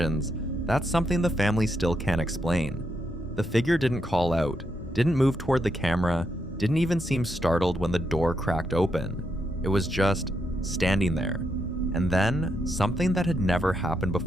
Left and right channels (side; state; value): both; normal; correlation 0.80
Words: that's something the family still can't explain. The figure didn't call out, didn't move toward the camera, didn't even seem startled when the door cracked open. It was just standing there. And then, something that had never happened